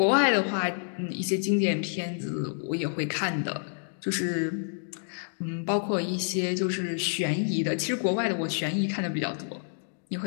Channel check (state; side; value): silent; right; 59 dB below the other